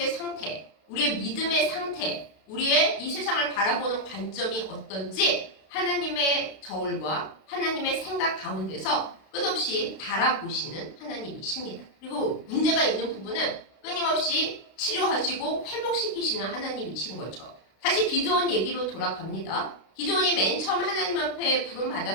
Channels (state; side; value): late; right; 32 ms